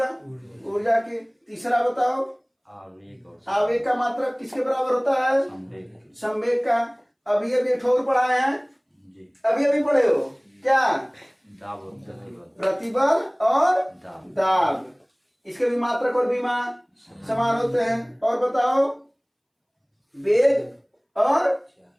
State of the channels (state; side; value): identical; both; correlation 1.00